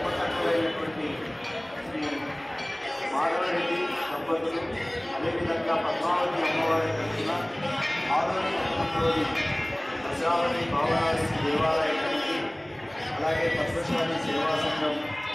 శ్రీ మాధవరెడ్డి దంపతులు, అదేవిధంగా పద్మావతి అమ్మవారి తరఫున ఆదోని పట్టణంలోని ప్రజావతి భావనాది దేవాలయానికి, అలాగే పద్మశాలి సేవా సంఘం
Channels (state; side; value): noise; right; hum, 29 dB below the sound